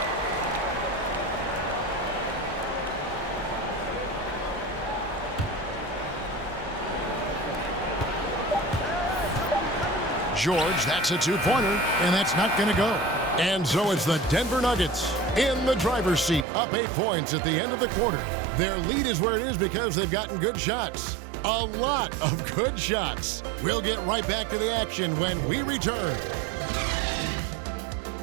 George, that's a 2-pointer, and that's not going to go. And so it's the Denver Nuggets in the driver's seat, up 8 points at the end of the quarter. Their lead is where it is because they've gotten good shots. A lot of good shots. We'll get right back to the action when we return.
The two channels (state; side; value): drops out; left; at 16.4 s